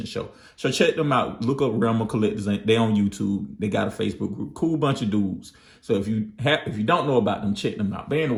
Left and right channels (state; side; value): identical; both; correlation 1.00